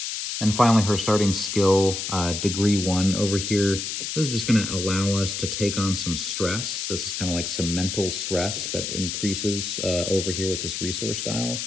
And finally, her starting skill, Degree 1 over here. This is just going to allow us to take on some stress. This is kind of like some mental stress that increases over here with this resource dial.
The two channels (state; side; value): noise; left; hiss, 4 dB below the sound